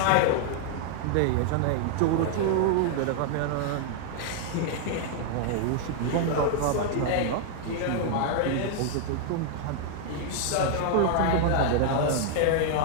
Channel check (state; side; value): different; both; correlation 0.00